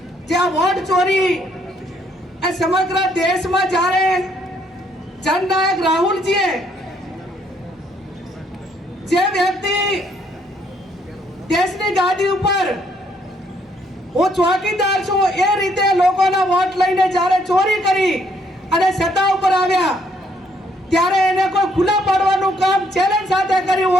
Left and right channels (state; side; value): normal; both; correlation 0.69